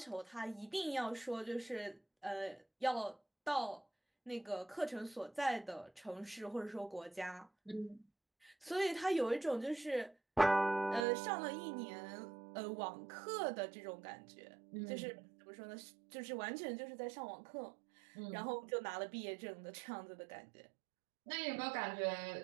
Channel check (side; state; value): left; drops out; at 11.1 s